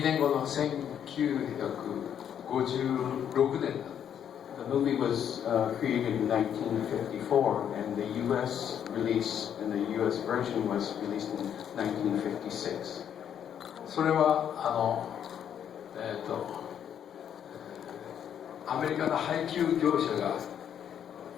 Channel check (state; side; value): quieter; right; 9.1 dB